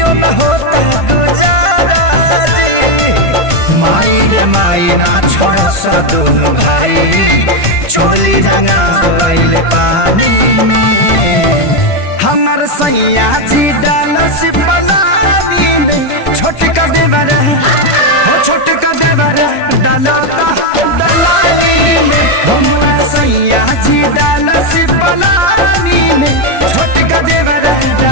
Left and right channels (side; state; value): right; late; 1.5 ms